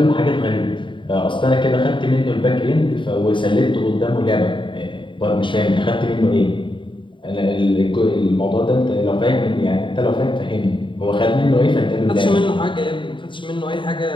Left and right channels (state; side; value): late; right; 0.24 ms